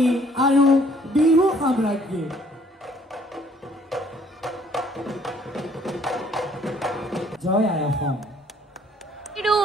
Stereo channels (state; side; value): normal; both; correlation 0.61